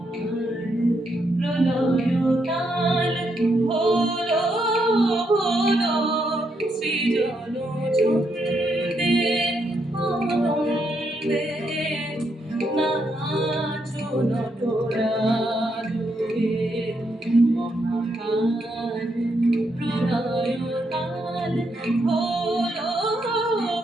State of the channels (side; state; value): both; normal; correlation 0.78